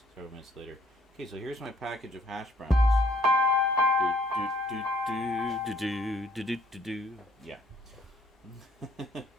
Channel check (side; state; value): both; normal; correlation 0.63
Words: Several minutes later. Okay, so here's my package of hash browns. Yeah. Now,